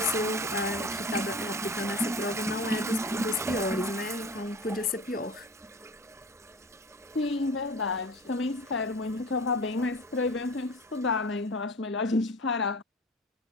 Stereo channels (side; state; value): both; normal; correlation 0.37